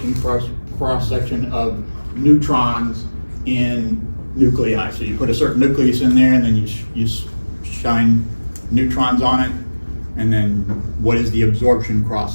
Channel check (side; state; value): both; inverted; correlation -1.00